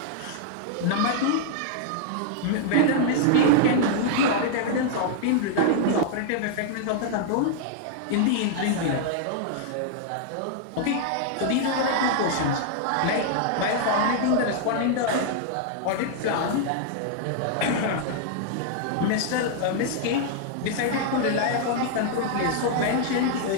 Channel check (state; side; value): different; both; correlation -0.01